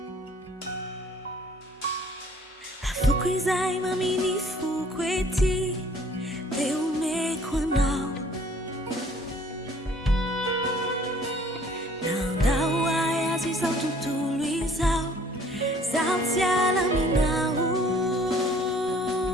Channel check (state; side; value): normal; both; correlation 0.56